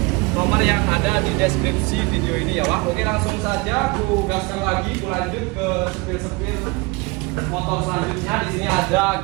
nomor yang ada di deskripsi video ini ya Wak. Oke, langsung saja aku gaskan lagi, aku lanjut ke sepil-sepil motor selanjutnya. Di sini ada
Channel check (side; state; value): left; quieter; 25.9 dB